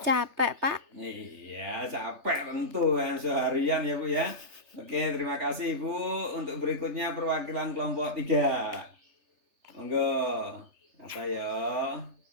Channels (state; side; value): late; left; 3.3 ms